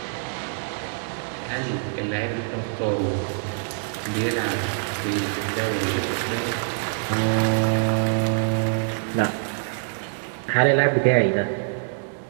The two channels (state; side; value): silent; left; 58 dB below the other